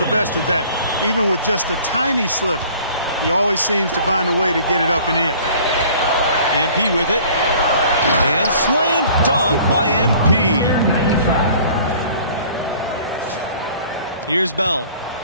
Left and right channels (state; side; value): inverted; both; correlation -0.50